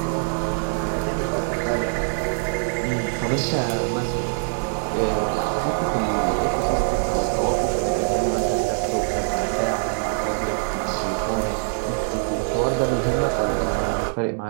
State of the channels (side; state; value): left; silent; digital silence